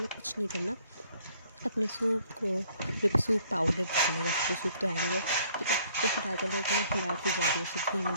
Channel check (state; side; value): inverted; both; correlation -0.62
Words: कुछ नहीं करना, अपने सूप को, जो भी सूप पाउडर डालेगा, तो सूप तो है नहीं है। ठीक है, तो फिर डालते रहो, उसमें हिलाती जा रही है, उसे